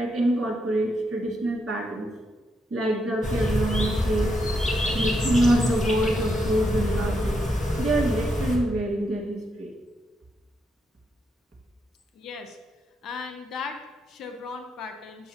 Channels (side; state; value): both; normal; correlation 0.81